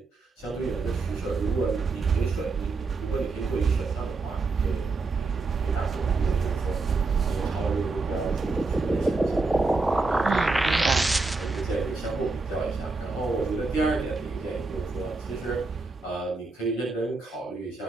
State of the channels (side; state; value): left; quieter; 3.7 dB